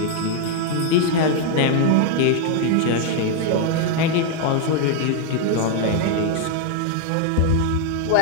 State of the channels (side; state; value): both; different; correlation 0.01